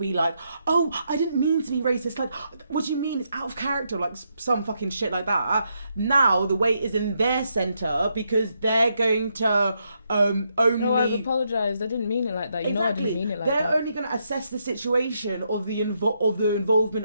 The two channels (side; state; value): both; inverted; correlation -0.79